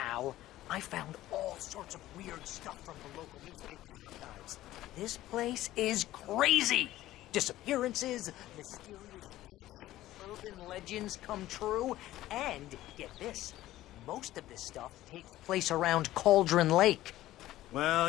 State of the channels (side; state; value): right; quieter; 15.1 dB